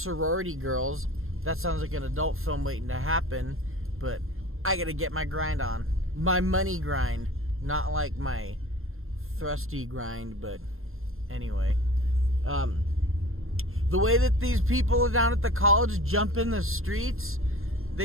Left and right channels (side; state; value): left; late; 0.61 ms